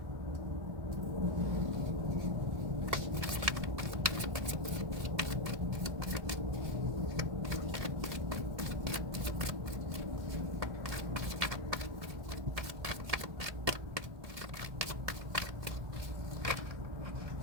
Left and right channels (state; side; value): late; left; 1.7 ms